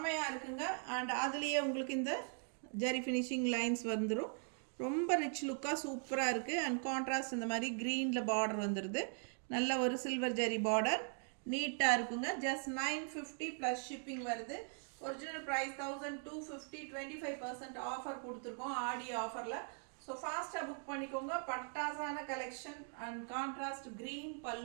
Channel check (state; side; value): silent; left; 51 dB below the other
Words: இருக்குங்க. அண்ட் அதுலேயே உங்களுக்கு இந்த ஜரி ஃபினிஷிங் லைன்ஸ் வந்துடும். ரொம்ப ரிச் லுக்காக சூப்பராக இருக்குது. அண்ட் கான்ட்ராஸ்ட் இந்த மாதிரி க்ரீனில் பார்டர் வந்துடுது. நல்ல ஒரு சில்வர் ஜரி பார்டர், நீட்டாக இருக்குங்க. ஜஸ்ட் 950 ப்ளஸ் ஷிப்பிங் வருது. ஒரிஜினல் ப்ரைஸ் 1250, 25% ஆஃபர் கொடுத்துருக்கோம் ஆடி ஆஃபரில். ஸோ ஃபாஸ்ட்டாக புக் பண்ணிக்கோங்க. பட்டாசான கலெக்ஷன் அண்ட் கான்ட்ராஸ்ட் க்ரீன்